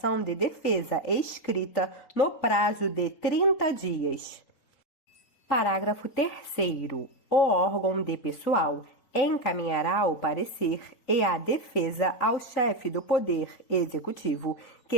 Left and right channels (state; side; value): late; right; 4.0 ms